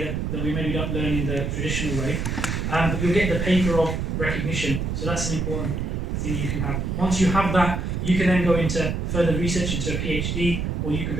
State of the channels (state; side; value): noise; right; rumble, 1 dB below the sound